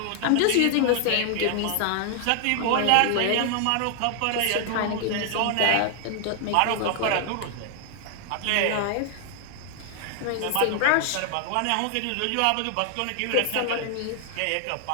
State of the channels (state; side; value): different; both; correlation 0.00